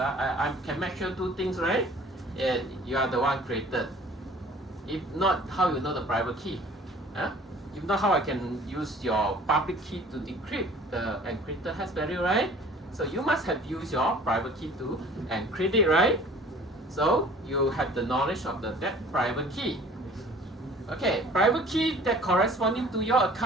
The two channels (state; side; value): normal; both; correlation 0.49